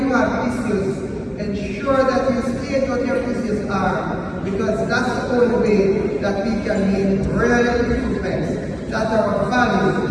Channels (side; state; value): both; identical; correlation 1.00